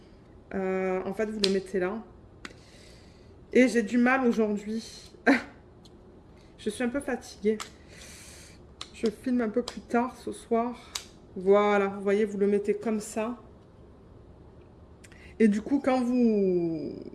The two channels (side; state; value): both; identical; correlation 1.00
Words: en fait, vous le mettez là. Et j'ai du mal aujourd'hui. Je suis un peu fatiguée. Je filme un peu plus tard ce soir. Voilà, vous voyez, vous le mettez comme ça. Et du coup, quand vous